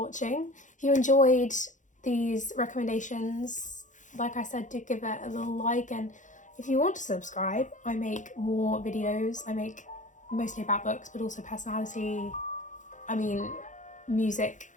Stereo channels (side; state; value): right; late; 0.36 ms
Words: If you enjoyed these recommendations, like I said, do give it a little like, and if you want to subscribe, I make more videos. I make mostly about books, but also personality, music